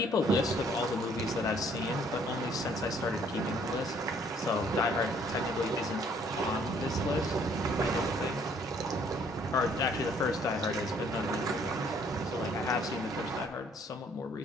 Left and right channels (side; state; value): both; normal; correlation 0.62